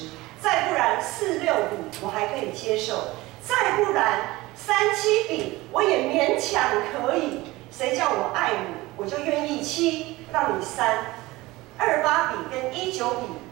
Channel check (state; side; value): quieter; left; 19.9 dB